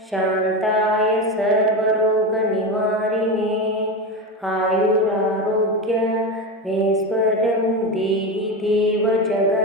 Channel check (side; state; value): both; normal; correlation 0.19